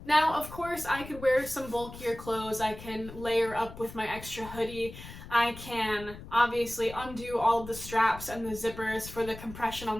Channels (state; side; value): noise; left; rumble, 14 dB below the sound